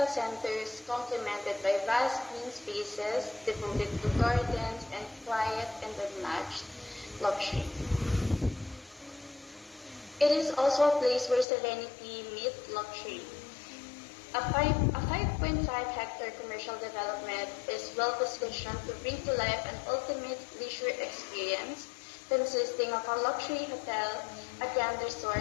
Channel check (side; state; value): right; drops out; at 11.5 s